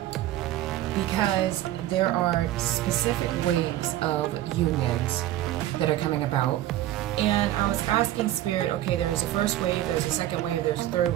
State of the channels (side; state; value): left; quieter; 13.8 dB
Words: because there are specific waves of unions that are coming about. And I was asking Spirit, okay, there was a first wave, there was a second wave, there's a third